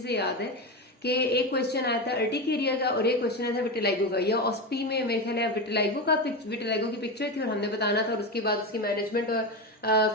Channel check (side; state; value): both; normal; correlation 0.18